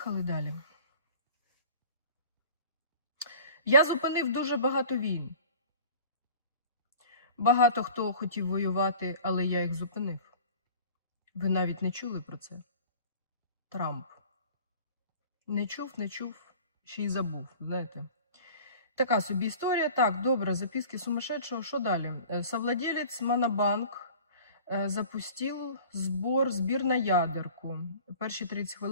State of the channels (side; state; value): both; inverted; correlation -0.44